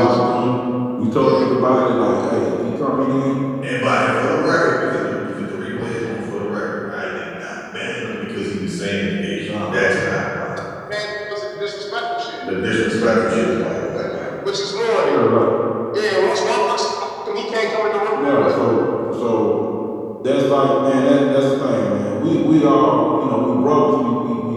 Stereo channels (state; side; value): identical; both; correlation 1.00